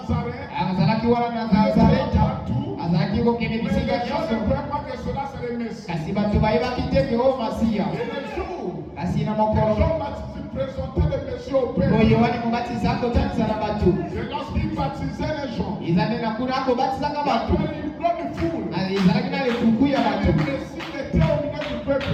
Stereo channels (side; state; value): both; identical; correlation 1.00